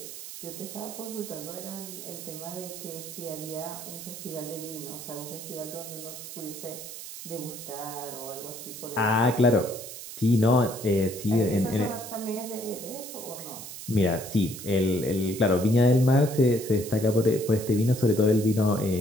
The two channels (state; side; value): noise; right; hiss, 11 dB below the sound